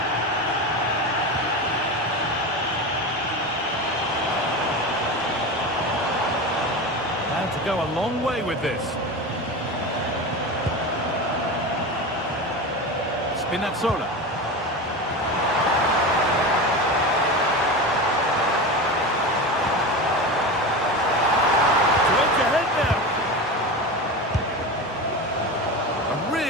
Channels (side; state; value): both; normal; correlation 0.25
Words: Had to go a long way with this. Spinazzola.